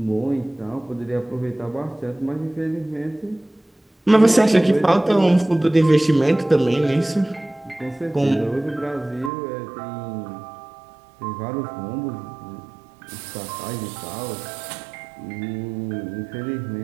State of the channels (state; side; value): drops out; left; at 9.3 s